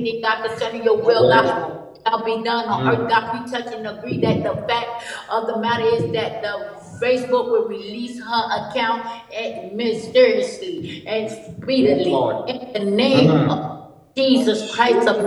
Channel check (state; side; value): identical; both; correlation 1.00